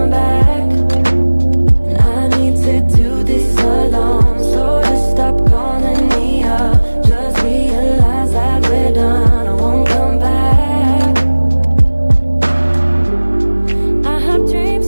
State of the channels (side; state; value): both; inverted; correlation -1.00